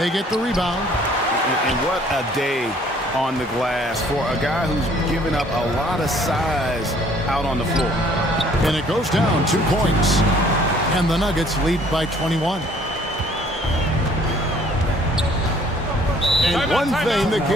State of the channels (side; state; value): both; normal; correlation 0.58